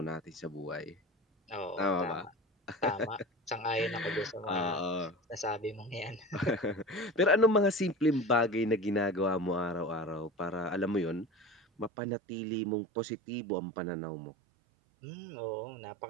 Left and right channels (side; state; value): left; drops out; at 11.9 s